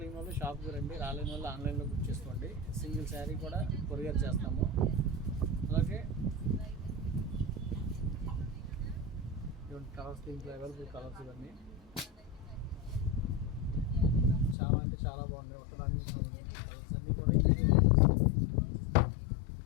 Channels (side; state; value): right; drops out; at 14.6 s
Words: వాళ్ళు షాప్కి రండి, రాలేని వాళ్ళు ఆన్లైన్లో బుక్ చేసుకోండి. సింగిల్ శారీ కూడా కొరియర్ చేస్తాము. అలాగే ఇటువంటి కలర్స్, దీంట్లో అవైలబుల్ కలర్స్ ఇవన్నీ చాలా అంటే చాలా బాగున్నాయి. ఒకదాన్ని కలర్స్ అన్నీ కూడా